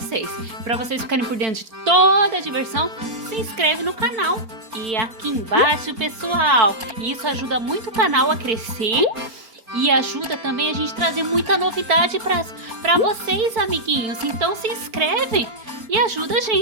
ficarem por dentro de toda a diversão. Se inscreve no canal e aqui embaixo, pessoal, isso ajuda muito o canal a crescer e ajuda também a gente trazer muita novidade para vocês, amiguinhos. Então se inscreve e ajuda a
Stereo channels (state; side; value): late; left; 4.5 ms